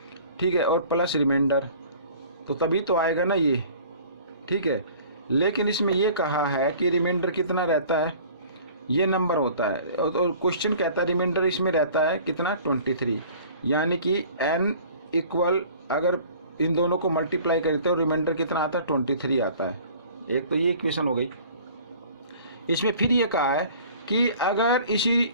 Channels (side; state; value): both; inverted; correlation -0.48